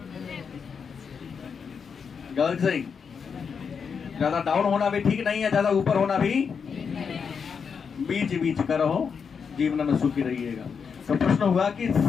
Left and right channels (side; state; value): right; quieter; 6.2 dB